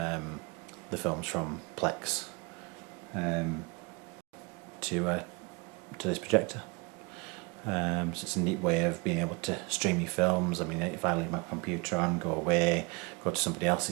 the films from Plex to this projector. So it's a neat way of being able to stream your films. I mean, if I leave my computer on, go away, go to somebody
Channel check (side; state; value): left; quieter; 29.2 dB